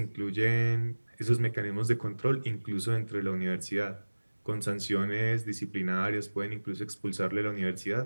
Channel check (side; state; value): both; inverted; correlation -1.00